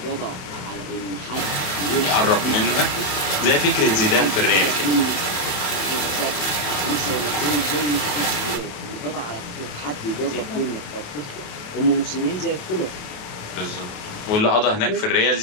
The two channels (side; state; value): right; late; 28 ms